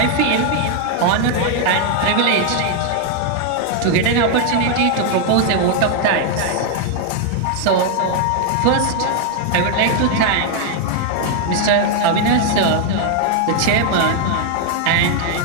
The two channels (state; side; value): different; both; correlation 0.00